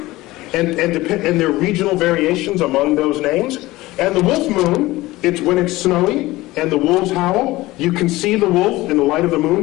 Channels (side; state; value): right; quieter; 18.8 dB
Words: and there are regional variations among those names. And the wolf moon, it's when it's snowy and the wolves howl. You can see the wolf in the light of the moon